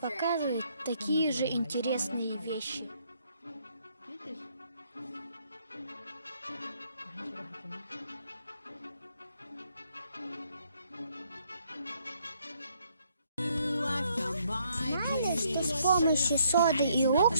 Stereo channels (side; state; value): both; inverted; correlation -0.69